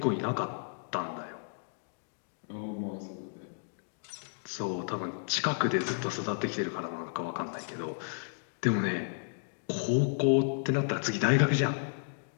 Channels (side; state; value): right; silent; digital silence